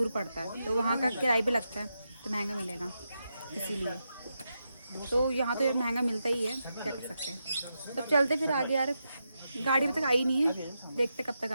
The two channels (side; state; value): both; inverted; correlation -0.86